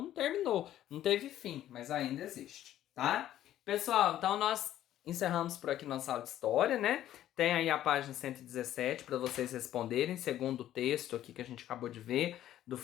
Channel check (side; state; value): right; quieter; 12.4 dB